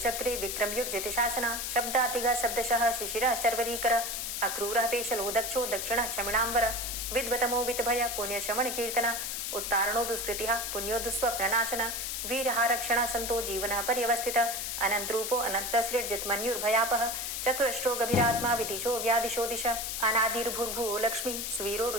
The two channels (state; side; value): noise; left; hiss, 3 dB below the sound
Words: चक्रे विक्रमयुर्जितशासनः शब्दातिगः शब्दशः शिशिरः शर्वरीकरः अक्रूरः पेशलो दक्षो दक्षिणः क्षमिणाम्बरः विद्वतमो वित्भय पुण्यशमनकीर्तनः उत्तारणो दुष्कृतिः पुण्यो दुःस्वप्ननाशनः वीरः रक्षणः सन्तो जीवनः पर्यवस्थितः अनन्तरूपो अनन्तसृड्जितमन्युर्भयापः चतुरष्ट्रो गभीरात्मा विदिशो व्यादिशो दिश अनादिर्भूर्भुवो लक्ष्मी सुवीरो